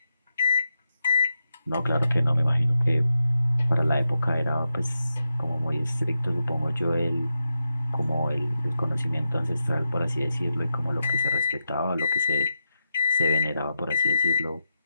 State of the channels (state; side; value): inverted; both; correlation -0.86